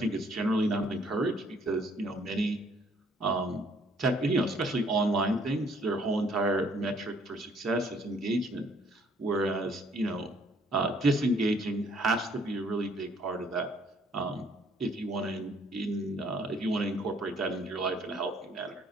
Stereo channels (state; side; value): normal; both; correlation 0.63